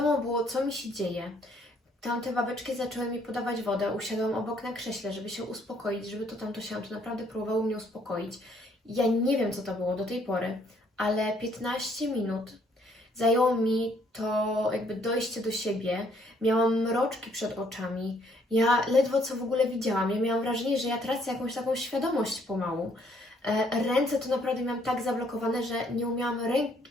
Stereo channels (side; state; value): both; normal; correlation 0.66